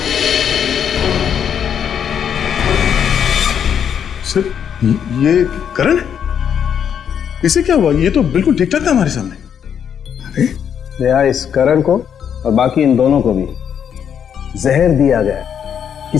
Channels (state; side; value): quieter; right; 8.3 dB